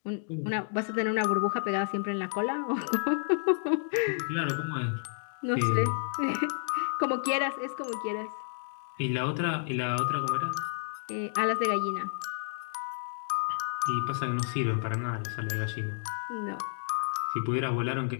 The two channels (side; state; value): right; silent; digital silence